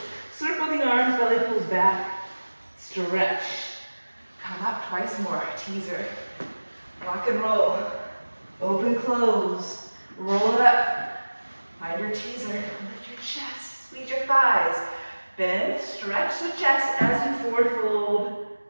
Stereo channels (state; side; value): inverted; both; correlation -1.00